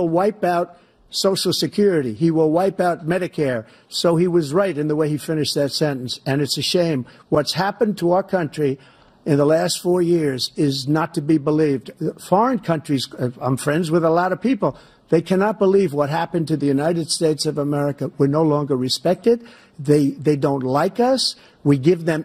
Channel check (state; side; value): identical; both; correlation 1.00